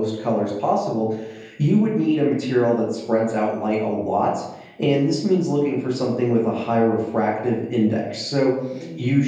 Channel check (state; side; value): identical; both; correlation 1.00